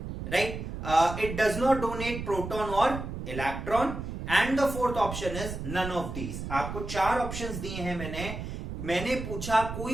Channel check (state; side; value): noise; right; rumble, 7 dB below the sound